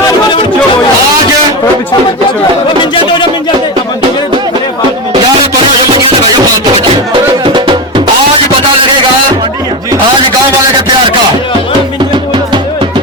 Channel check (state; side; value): normal; both; correlation 0.17